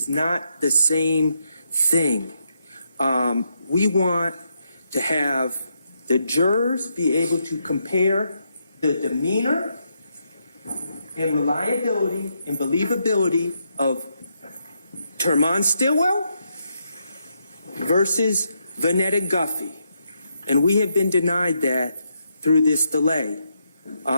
not the same thing. We want to have the jurors be able to compare the demeanor and reliability and believability of Termon Stillwell versus Vanetta Guffey. And we have been denied that through this delay.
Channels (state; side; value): inverted; both; correlation -0.80